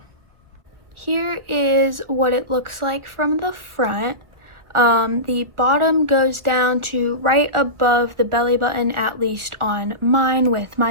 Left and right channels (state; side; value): late; left; 1.7 ms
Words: Here is what it looks like from the front. The bottom goes down to right above the belly button, at least on mine with